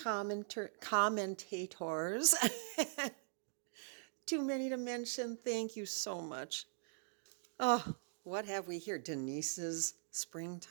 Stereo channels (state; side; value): silent; left; digital silence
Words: Too many to mention. Thank you so much. Oh, what have we here? Denise's